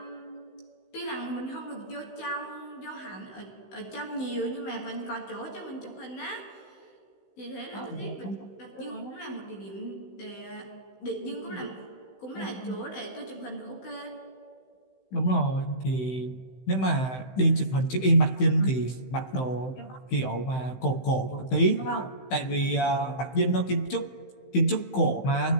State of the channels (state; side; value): late; right; 16 ms